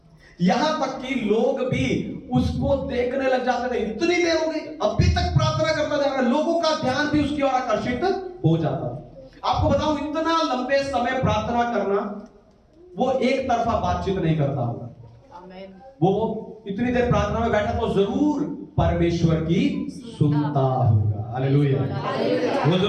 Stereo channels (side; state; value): both; identical; correlation 1.00